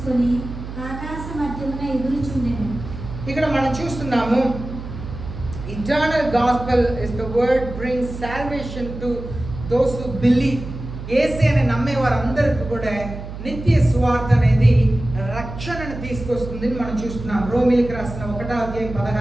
ఆకాశ మధ్యమున ఎగురుచుండెను. ఇక్కడ మనం చూస్తున్నాము, eternal gospel is the word brings salvation to those who believe. యేసు అని నమ్మే వారందరికీ కూడా నిత్య సువార్త అనేది రక్షణను తీసుకొస్తుంది మనం చూస్తున్నాం. రోమీయులకు రాసిన 1వ అధ్యాయం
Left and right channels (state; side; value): noise; right; hum, 10 dB below the sound